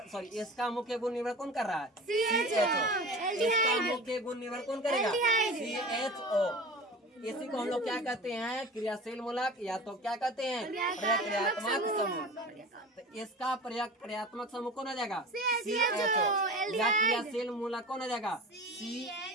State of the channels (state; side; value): normal; both; correlation 0.35